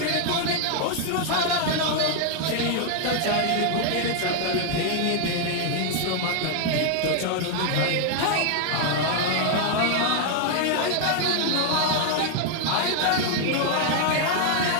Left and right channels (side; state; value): both; different; correlation 0.00